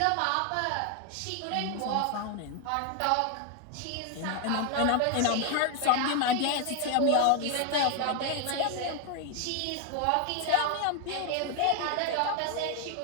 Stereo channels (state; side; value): different; both; correlation 0.01